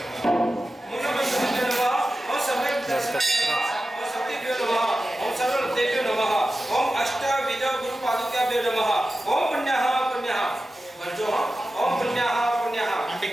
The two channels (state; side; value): normal; both; correlation 0.93